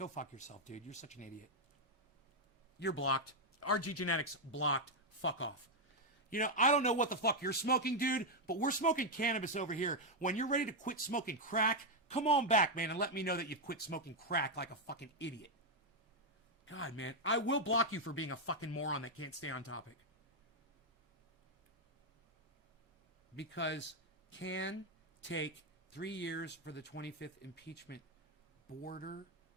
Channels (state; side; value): normal; both; correlation 0.00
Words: fuck yourself, dude. You're such an idiot. You're blocked. RG Genetics blocked. Fuck off. You know, I don't know what the fuck you're smoking, dude, but we're smoking cannabis over here. When you're ready to quit smoking crack, come on back, man, and let me know that you've quit smoking crack like a fucking idiot. God, man, I will block you for being a fucking moron that can't stay on topic. Because can take 3 years for the 25th impeachment. Border